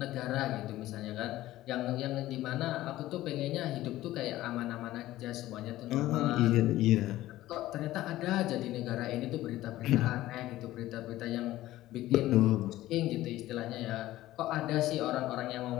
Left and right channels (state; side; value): quieter; right; 15.6 dB